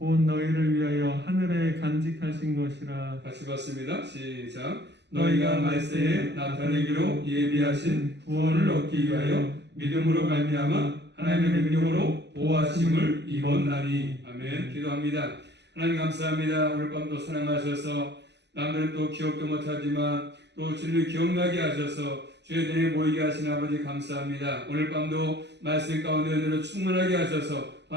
너희를 위하여 하늘에 간직하신 것이라. 같이 봤습니다. 시작. 너희가 말세에 나타내기로 예비하신 구원을 얻기 위하여 믿음으로 말미암아 하나님의 능력으로 보호하심을 입었나니. 아멘. 기도합니다. 하나님 감사합니다. 오늘 밤도 사랑하셔서 남들은 또 기억도 못하지만 또 주님을 기억나게 하셔서 주의 전에 모이게 하신 아버지 감사합니다. 오늘 밤도 말씀 가운데 은혜로 충만하게 하셔서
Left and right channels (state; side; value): late; left; 0.50 ms